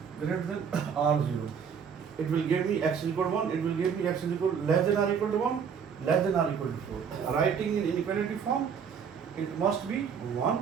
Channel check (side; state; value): left; quieter; 6.9 dB